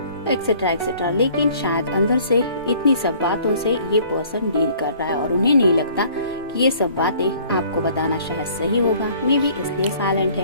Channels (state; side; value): inverted; both; correlation -0.55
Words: etcetera etcetera. लेकिन शायद अंदर से इतनी सब बातों से ये पर्सन डील कर रहा है और उन्हें नहीं लगता कि ये सब बातें आपको बताना शायद सही होगा, मे बी इसलिए साइलेंट